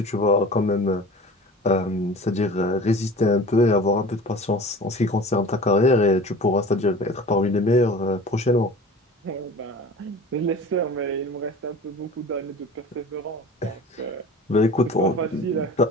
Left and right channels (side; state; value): both; normal; correlation 0.40